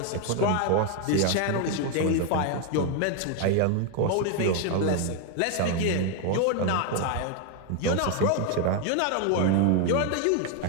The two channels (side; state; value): both; different; correlation 0.01